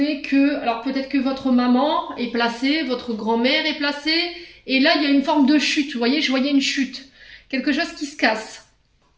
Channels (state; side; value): identical; both; correlation 1.00